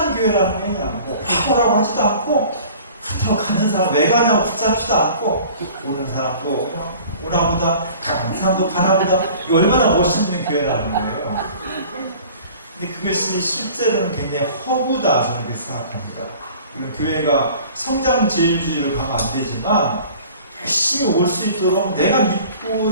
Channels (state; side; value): inverted; both; correlation -0.46